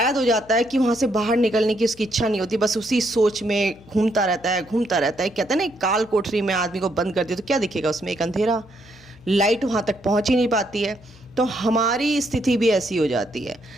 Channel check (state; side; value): noise; left; hum, 24 dB below the sound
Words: हो जाता है कि वहाँ से बाहर निकलने की उसकी इच्छा नहीं होती, बस उसी सोच में घूमता रहता है, घूमता रहता है। कहते हैं ना, एक काल कोठरी में आदमी को बंद कर दिया तो क्या दिखेगा उसमें? एक अंधेरा, लाइट वहाँ तक पहुँच ही नहीं पाती है। तो हमारी स्थिति भी ऐसी हो जाती है